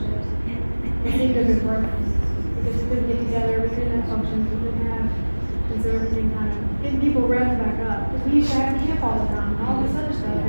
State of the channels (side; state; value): both; inverted; correlation -1.00